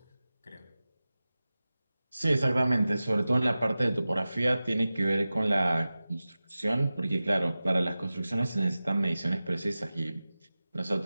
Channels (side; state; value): both; inverted; correlation -0.96